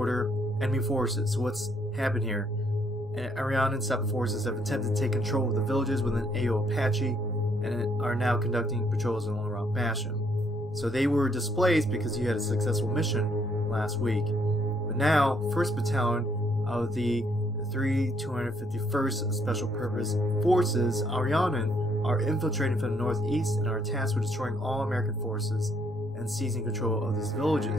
Enemy forces. So what's happened here? Ariane and Separate forces have attempted to take control of the villages within AO Apache and are now conducting patrols along Route Basham. So they were displaced because you had a successful mission last week. But now, 1st Battalion of the 251st Special Purpose Forces, Ariane, are infiltrating from the northeast and are tasked with destroying all American forces and seizing control of these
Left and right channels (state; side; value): noise; right; hum, 29 dB below the sound